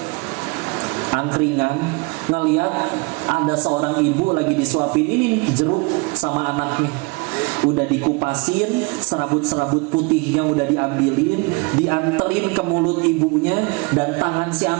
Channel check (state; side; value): quieter; left; 28.8 dB